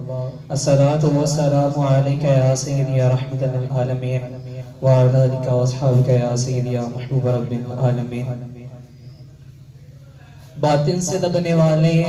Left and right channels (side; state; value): both; identical; correlation 1.00